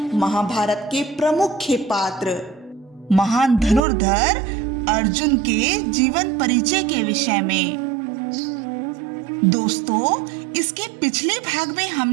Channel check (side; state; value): left; drops out; at 3.8 s